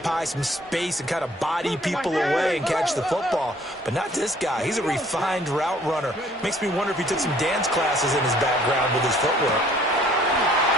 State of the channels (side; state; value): both; normal; correlation 0.58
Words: some space and kind of body people away and catch the football. But not this guy. He's a refined route runner. Makes me wonder if he took some dance classes in his background with his footwork.